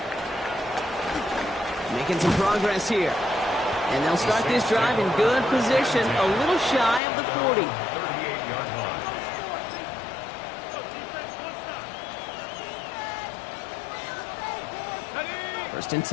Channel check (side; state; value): right; drops out; at 7.0 s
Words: Making some progress here. And they'll start this drive in good position, a little shy of the 40. 38-yard line. 1st and